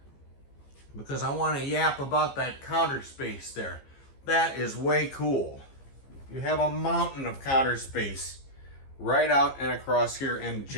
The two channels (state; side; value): late; right; 15 ms